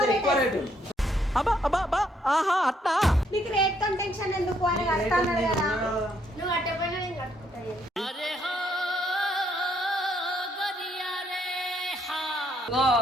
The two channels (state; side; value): normal; both; correlation 0.71